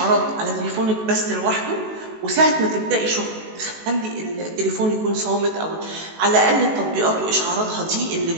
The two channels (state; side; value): late; left; 19 ms